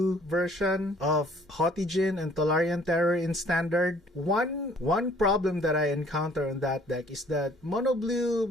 version of Haughty Djinn and Tolarian Terror in standard. One problem that I encounter on that deck is that mono blue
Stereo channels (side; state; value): both; normal; correlation 0.58